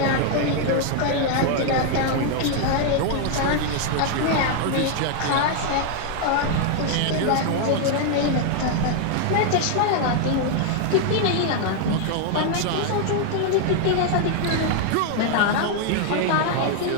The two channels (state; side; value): different; both; correlation 0.00